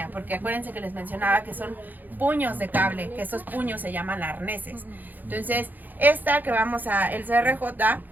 porque acuérdense que les mencionaba que son puños de cable, que esos puños se llaman arneses. Entonces, esta que vamos a, el CRJ,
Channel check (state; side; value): late; left; 0.085 ms